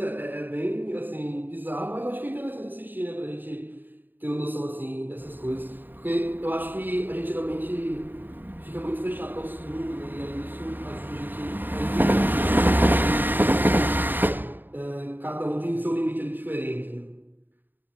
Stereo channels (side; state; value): left; late; 0.091 ms